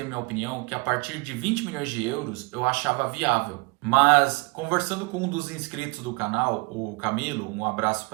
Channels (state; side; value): quieter; left; 27.7 dB